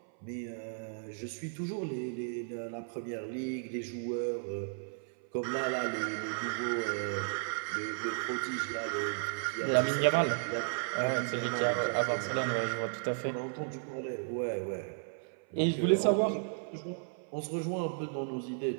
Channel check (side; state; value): left; silent; 55 dB below the other